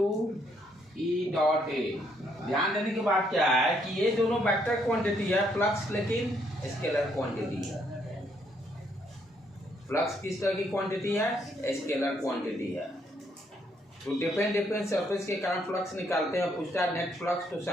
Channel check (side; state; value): both; normal; correlation 0.71